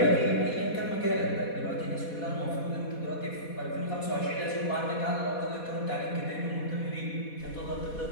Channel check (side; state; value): right; late; 4.2 ms